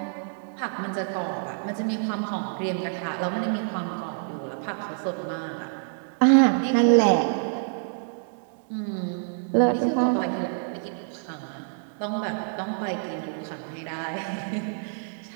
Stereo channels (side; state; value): left; silent; digital silence